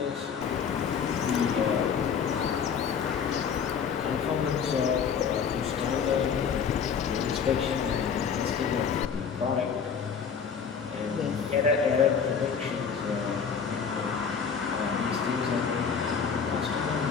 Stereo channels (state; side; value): quieter; right; 6.7 dB